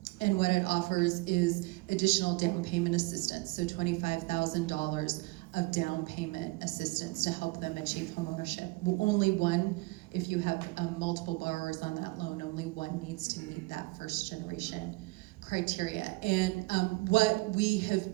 And what it offers is additional down payment assistance, so $25,000 of down payment assistance to help them achieve homeownership. Only one, if you have multiple borrowers on that loan, only one needs to meet that first generation criteria. And what we have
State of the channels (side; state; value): left; quieter; 23.8 dB